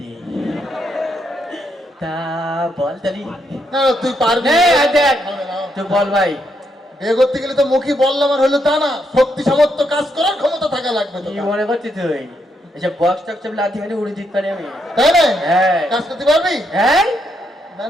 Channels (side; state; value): both; normal; correlation 0.78